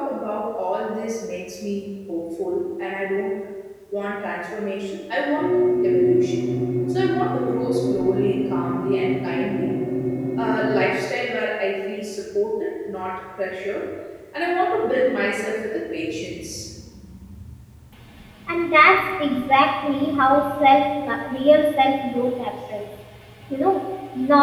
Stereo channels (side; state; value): both; identical; correlation 1.00